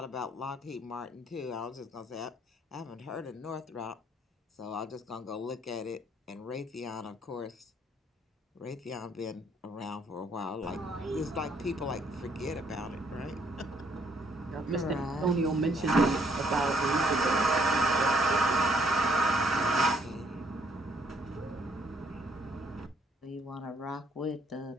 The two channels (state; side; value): normal; both; correlation 0.67